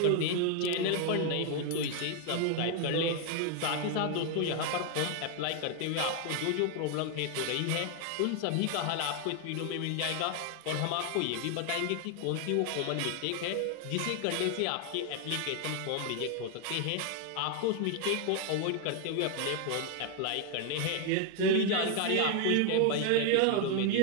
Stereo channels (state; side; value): different; both; correlation 0.00